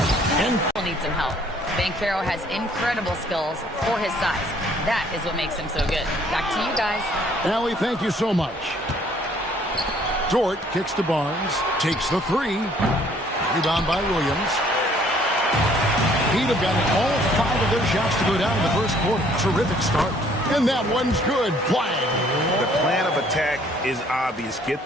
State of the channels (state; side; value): normal; both; correlation 0.60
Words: And needs some help. Banchero has incredible skills for his size. That is what makes him so good. Back to you guys. Allie, thank you so much. Dort kicks to Barnes. Takes the 3. Rebound by Williams. Heat have gotten all 5 of their shots to go down in the first quarter. Terrific start. And that one's good. Flag. The plan of attack is obvious. Get